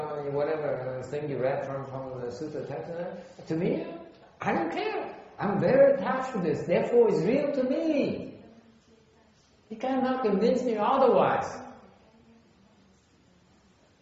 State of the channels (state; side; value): identical; both; correlation 1.00